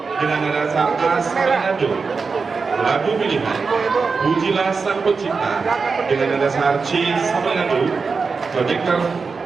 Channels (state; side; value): quieter; left; 4.8 dB